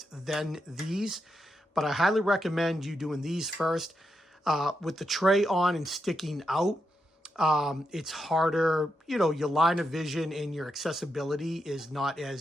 then these, but I highly recommend you doing these first. With the tray on and sticking out, it's harder, you know, your line of vision and your accessibility is not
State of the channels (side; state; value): both; normal; correlation 0.84